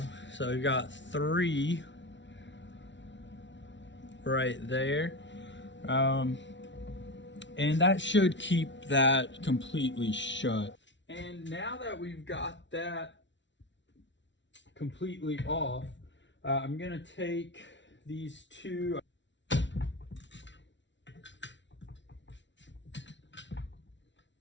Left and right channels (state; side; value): late; right; 0.53 ms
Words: we've got 3 right there. And that should keep that completely shut. And now that we've got that completely off, I'm gonna take these 2